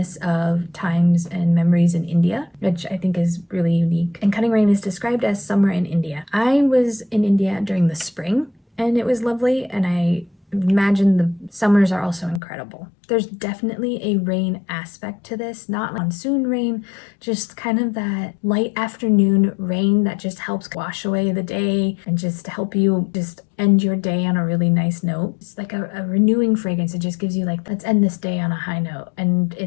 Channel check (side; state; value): right; drops out; at 12.4 s